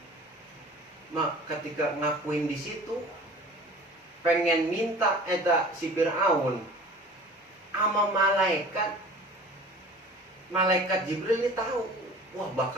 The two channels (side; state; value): both; normal; correlation 0.43